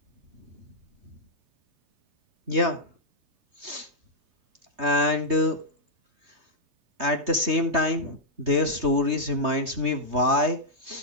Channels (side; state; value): left; late; 3.2 ms